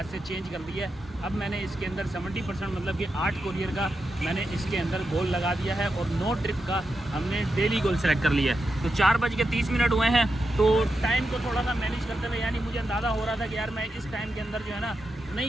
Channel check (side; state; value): both; normal; correlation 0.87